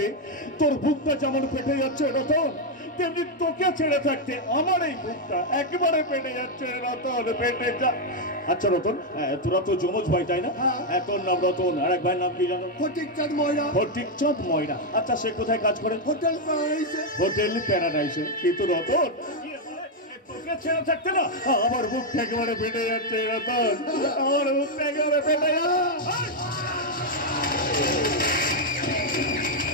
তোর বুকটা যেমন ফেটে যাচ্ছে রতন, তেমনি তোকে ছেড়ে থাকতে আমার এই বুকটা একেবারে ফেটে যাচ্ছে রতন, ফেটে যা। আচ্ছা রতন, তোরা তো যমজ ভাই তাই না? হ্যাঁ। তোর নাম রতন, আর এক ভাইয়ের নাম কি জানো? ফটিকচাঁদ ময়রা। ফটিকচাঁদ ময়রা। আচ্ছা, সে কোথায় কাজ করে? হোটেল প্যারাডাইসে। হোটেল প্যারাডাইসে। কিন্তু রতন, তোকে ছেড়ে থাকতে না আমার বুকটা একেবারে ফেটে যাচ্ছে রতন, আমার বুকটা একেবারে ফেটে যাচ্ছে।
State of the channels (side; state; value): both; normal; correlation 0.01